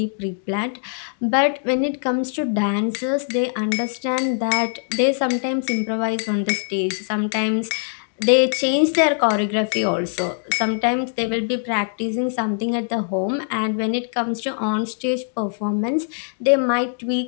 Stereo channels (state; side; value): silent; right; 64 dB below the other